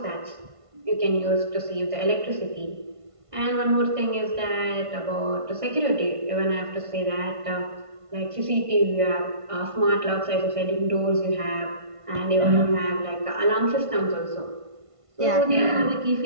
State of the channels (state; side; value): late; left; 1.5 ms